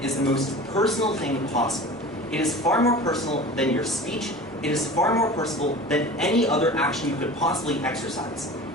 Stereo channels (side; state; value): both; normal; correlation 0.37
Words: is the most personal thing possible. It is far more personal than your speech. It is far more personal than any other action you could possibly exercise.